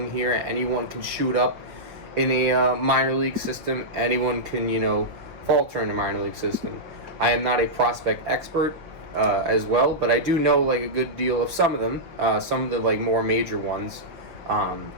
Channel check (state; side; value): late; left; 5.9 ms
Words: here. Anyone can shoot up in a minor league system. Anyone can, falter in a minor league system. I am not a prospect expert as well, but I do know like a good deal of some of them. Some of the like more major ones.